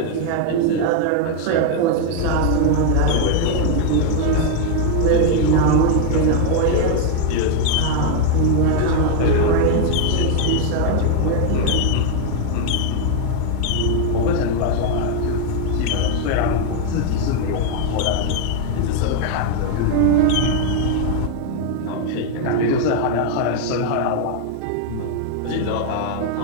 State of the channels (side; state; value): both; different; correlation 0.00